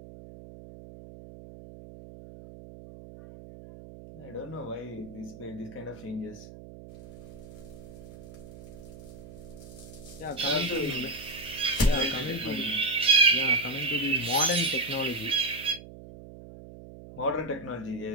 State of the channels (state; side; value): noise; right; hum, 16 dB below the sound